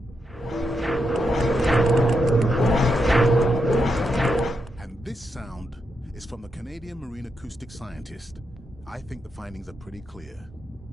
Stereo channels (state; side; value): normal; both; correlation 0.83